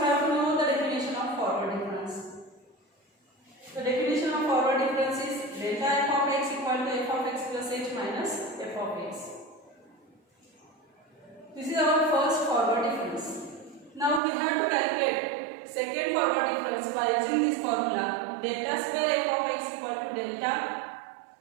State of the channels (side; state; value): left; drops out; at 14.2 s